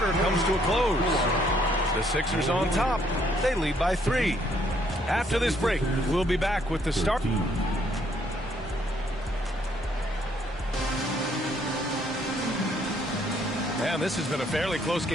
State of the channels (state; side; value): normal; both; correlation 0.68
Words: comes to a close. The Sixers on top. They lead by 3. After this break, we'll be back with the start. And this has been a fairly close